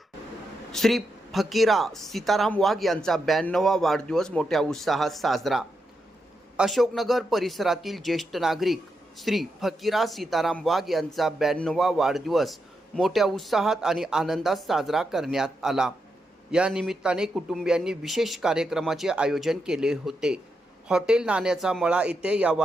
श्री फकीरा सीताराम वाघ यांचा 92वा वाढदिवस मोठ्या उत्साहात साजरा. अशोकनगर परिसरातील ज्येष्ठ नागरिक श्री फकीरा सीताराम वाघ यांचा 92वा वाढदिवस मोठ्या उत्साहात आणि आनंदात साजरा करण्यात आला. या निमित्ताने कुटुंबियांनी विशेष कार्यक्रमाचे आयोजन केले होते. हॉटेल नाण्याचा मळा येथे या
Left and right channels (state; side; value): normal; both; correlation 0.84